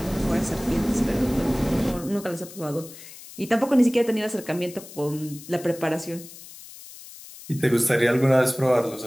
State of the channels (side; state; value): left; noise; hiss, 17 dB below the sound